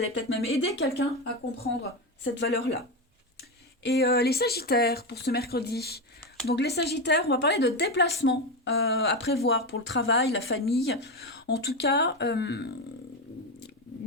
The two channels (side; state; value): both; normal; correlation 0.14